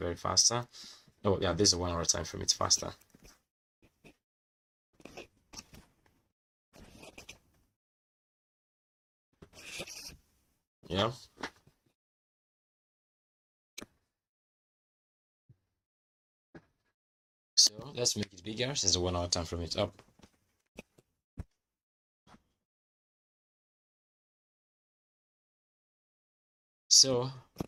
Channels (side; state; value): both; identical; correlation 1.00